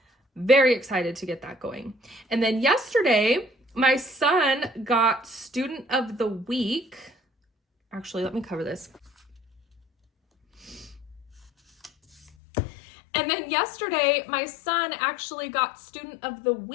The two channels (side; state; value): right; drops out; at 12.3 s